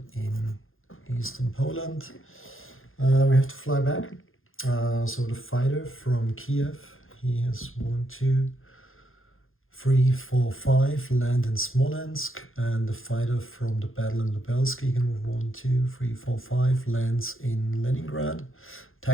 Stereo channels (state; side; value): late; right; 0.60 ms